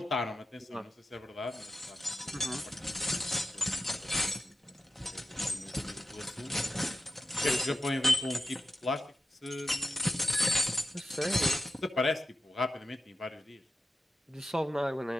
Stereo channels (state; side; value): normal; both; correlation 0.90